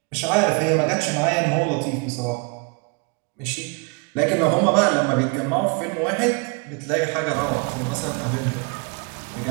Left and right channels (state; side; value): quieter; left; 32.5 dB